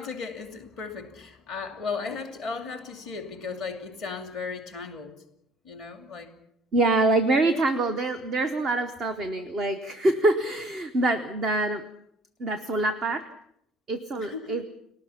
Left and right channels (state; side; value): normal; both; correlation 0.55